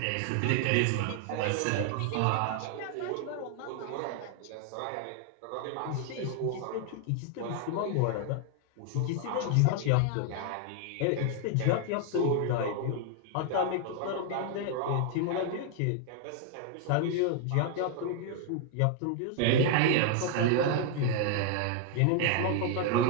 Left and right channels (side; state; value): both; different; correlation 0.00